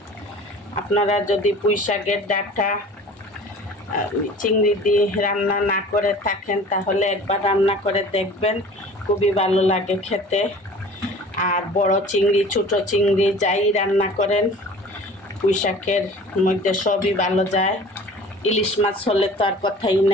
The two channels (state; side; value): normal; both; correlation 0.44